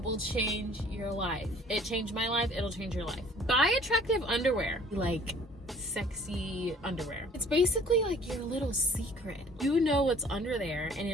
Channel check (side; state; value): both; normal; correlation 0.54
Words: will change your life. It changed my life, it'll change your life. Buy attractive underwear, like sexy underwear. It's basically like your little secret. You know what's under there and